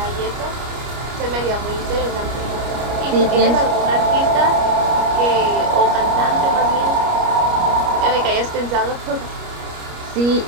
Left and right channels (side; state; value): left; late; 29 ms